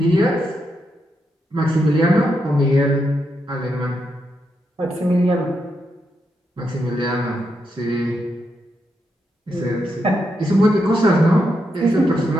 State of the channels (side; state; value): both; normal; correlation 0.82